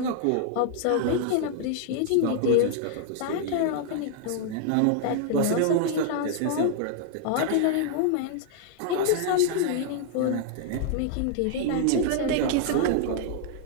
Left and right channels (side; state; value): both; different; correlation -0.01